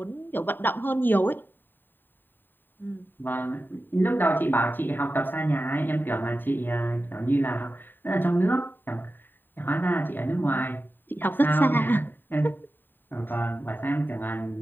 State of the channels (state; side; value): late; right; 0.093 ms